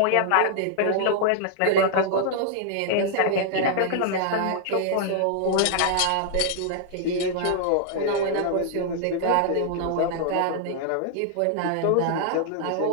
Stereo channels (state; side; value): different; both; correlation -0.01